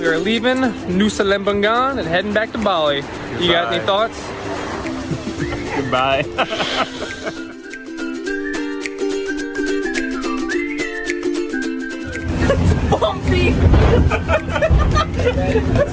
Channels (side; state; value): both; identical; correlation 1.00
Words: We are leaving Nusa Lembongan and heading back to Bali. You got any thoughts? Goodbye. Bumpy!